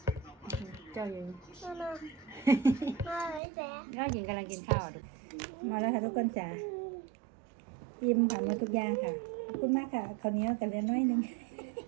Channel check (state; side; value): drops out; left; at 3.4 s